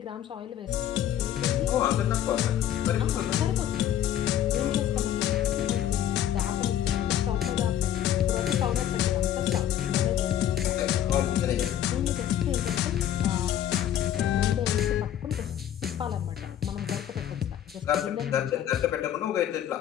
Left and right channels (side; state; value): right; quieter; 10.9 dB